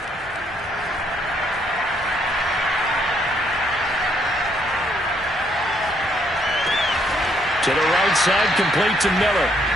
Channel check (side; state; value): both; normal; correlation 0.70